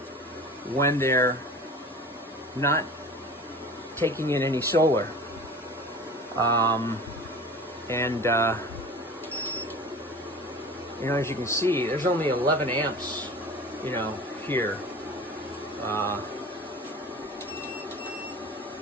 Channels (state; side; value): normal; both; correlation 0.38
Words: when they're not taking in any solar. You know, as you can see, there's only 11 amps, you know, here.